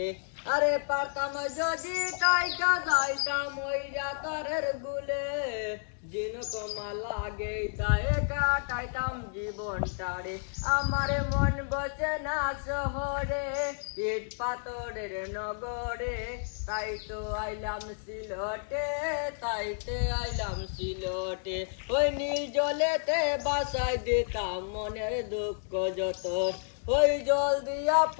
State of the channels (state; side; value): silent; right; digital silence